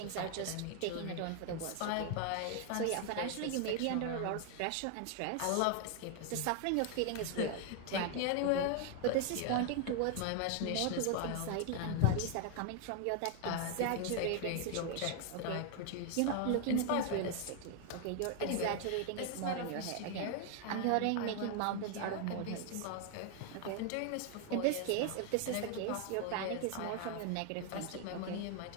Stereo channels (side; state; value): both; different; correlation 0.00